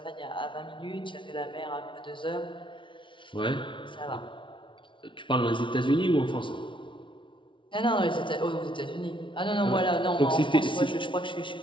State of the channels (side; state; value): right; late; 0.24 ms